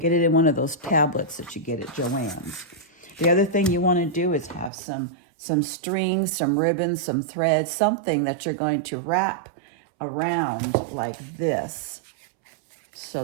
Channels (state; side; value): drops out; left; at 4.7 s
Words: it in one of those tablets that you get at Joann's. The other thing you want to do is have some strings, some ribbons, some thread, something that you're going to wrap around like this so